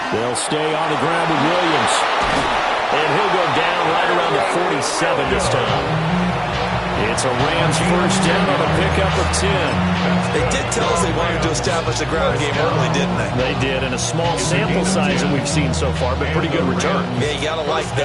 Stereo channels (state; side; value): identical; both; correlation 1.00